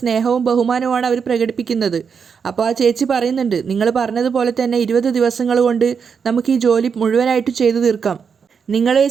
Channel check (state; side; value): quieter; left; 6.3 dB